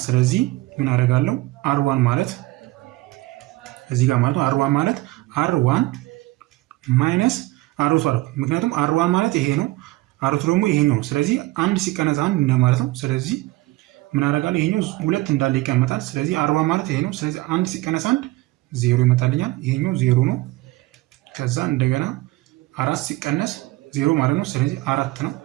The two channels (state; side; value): quieter; left; 19.6 dB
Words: ስለዚህ ምን አደርጋለሁ r1 ማለት እዚህ ጋር ማለት ነው r1 ማለት r1 ማይነስ r2 አደረኩ። ምክንያቱም r1 ማለት ይሄ ነው r2 ደግሞ ይሄኛው ስለዚህ አንድ ሲቀነስ አንድ እንደማለት ነው። ስለዚህ ምን አደርጋለሁ ይሄኛው ሁለት እንዳለ ይቀመጣል። ስለዚህ r1 ማለት ይሄ ነው። ስለዚህ አንድ ሲቀነስ አንድ 0 ይመጣልኛል። ይሄኛው 0 ነው። ከዛ እንደገና 4 ሲቀነስ 0 ማለት ነው። ስለዚህ 4 ነው።